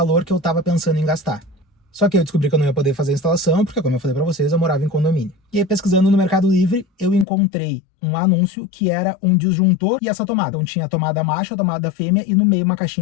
que eu estava pensando em gastar. Só que eu descobri que eu não ia poder fazer a instalação, porque como eu falei para vocês, eu morava em condomínio. E aí pesquisando no Mercado Livre, eu encontrei um anúncio que era um disjuntor e essa tomada. Então tinha a tomada macho, a tomada fêmea e no meio uma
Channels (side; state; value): right; drops out; at 7.2 s